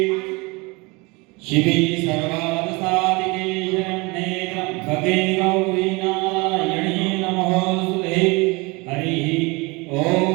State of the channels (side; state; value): left; quieter; 25.7 dB